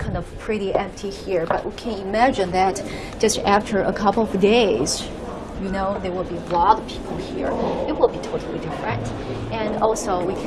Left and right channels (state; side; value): identical; both; correlation 1.00